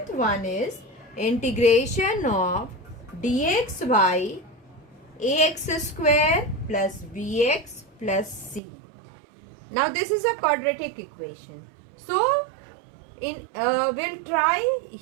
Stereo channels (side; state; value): left; drops out; at 8.6 s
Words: one is integration of dx by ax square plus bx plus c. Now this is a quadratic equation. So we'll try